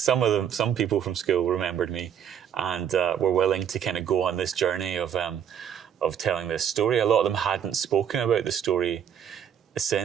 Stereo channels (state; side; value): quieter; left; 8.8 dB